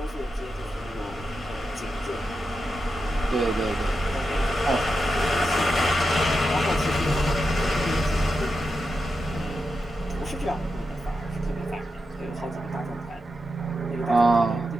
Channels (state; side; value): normal; both; correlation 0.88